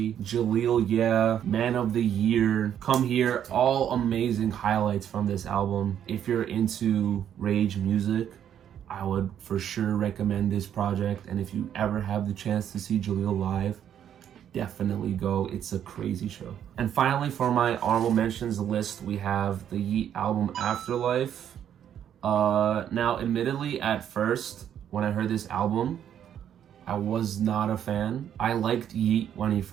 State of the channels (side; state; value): left; quieter; 9.6 dB